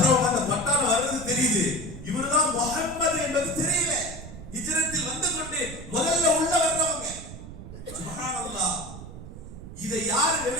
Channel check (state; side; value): noise; right; rumble, 13 dB below the sound